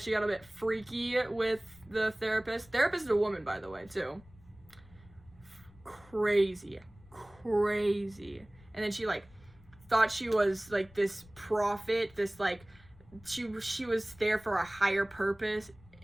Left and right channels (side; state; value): left; noise; rumble, 25 dB below the sound